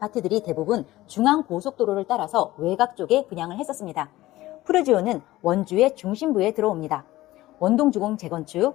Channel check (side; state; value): right; quieter; 16.9 dB